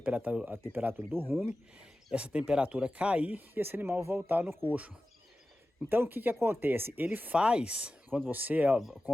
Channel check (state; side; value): normal; both; correlation 0.94